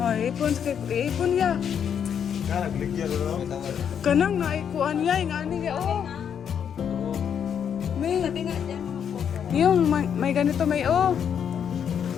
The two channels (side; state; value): right; quieter; 8.1 dB